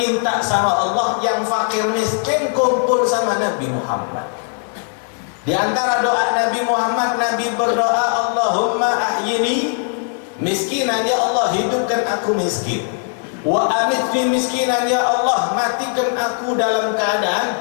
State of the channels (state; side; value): silent; right; 55 dB below the other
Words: minta sama Allah yang fakir miskin kumpul sama Nabi Muhammad. Di antara doa Nabi Muhammad, Nabi berdoa, Allahumma ahyini miskinan, ya Allah hidupkan aku miskin. Wa amitni miskinan, ya Allah matikan aku dalam